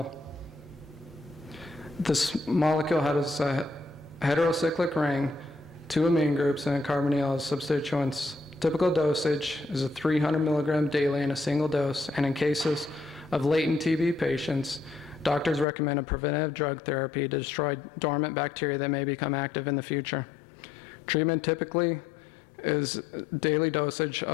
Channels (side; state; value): right; drops out; at 15.7 s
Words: This molecule has a heterocyclic ring, 2 amine groups, and a carbonyl as substituents. Typical dosage is a 300 milligram daily in a single dose, and in cases of latent TB patients, doctors recommend a preventative drug therapy to destroy dormant bacteria that may become active in the future. Treatment typically is daily dosage